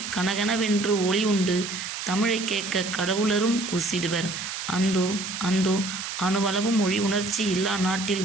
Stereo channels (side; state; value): right; noise; hiss, 6 dB below the sound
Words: கனகனவென்று ஒளி உண்டு, தமிழை கேட்க கடவுளரும் கூசிடுவர். அந்தோ அந்தோ அணுவளவும் மொழி உணர்ச்சி இல்லா நாட்டில்